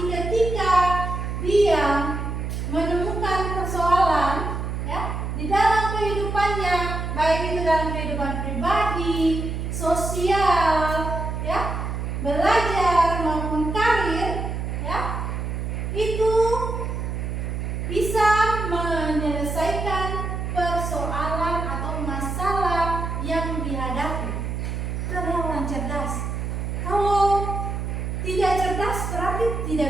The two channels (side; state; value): right; noise; hum, 3 dB below the sound